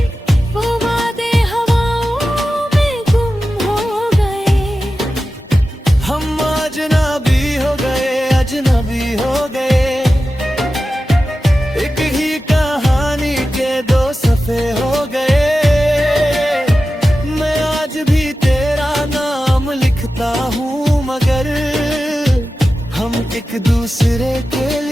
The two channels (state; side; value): normal; both; correlation 0.93